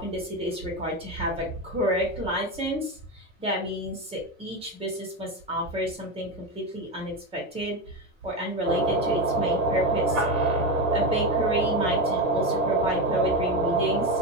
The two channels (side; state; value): both; normal; correlation 0.15